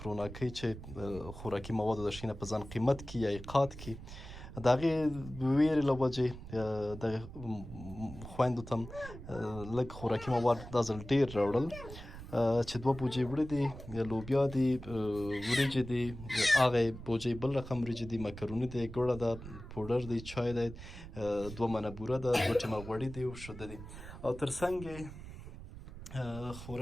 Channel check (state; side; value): noise; right; rumble, 13 dB below the sound